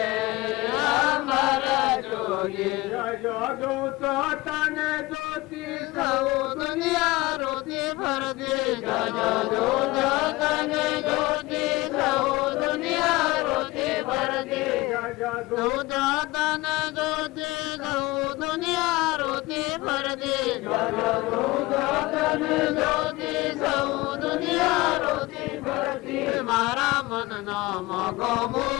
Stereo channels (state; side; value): quieter; right; 20.9 dB